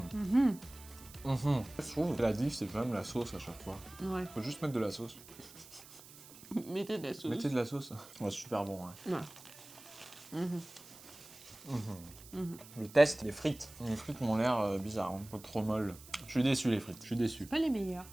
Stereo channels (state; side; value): noise; right; hiss, 19 dB below the sound